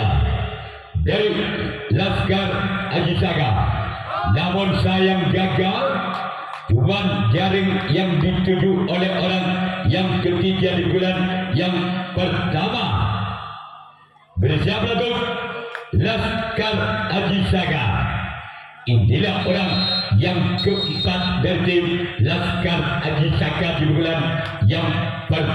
dari Laskar Aji Saka, namun sayang gagal. Cuman jaring yang dituju oleh orang yang ketiga di bulan yang pertama bersama lagu Laskar Aji Saka. Inilah orang yang keempat dari tim Laskar Aji Saka di bulan yang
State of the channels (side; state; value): both; identical; correlation 1.00